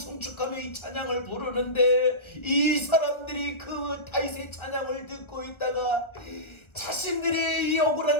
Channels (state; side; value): late; right; 1.3 ms